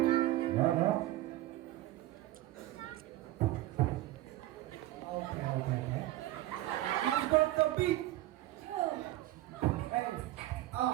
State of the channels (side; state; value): left; quieter; 15.8 dB